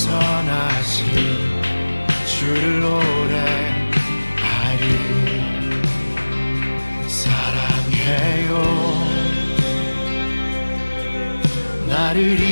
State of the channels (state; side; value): inverted; both; correlation -1.00